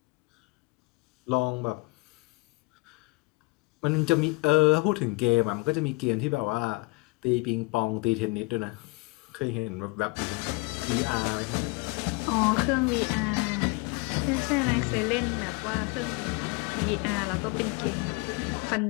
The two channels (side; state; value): right; quieter; 26.9 dB